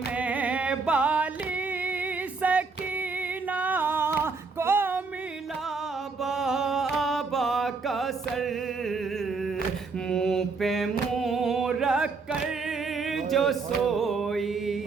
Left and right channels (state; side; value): quieter; left; 4.4 dB